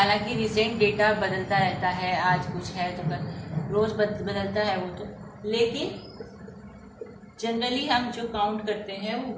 रिसेंट डेटा बदलता रहता है, आज कुछ है तो कल रोज़ बदलता है वो तो, लेकिन जनरली हम जो काउंट करते हैं वो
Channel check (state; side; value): identical; both; correlation 1.00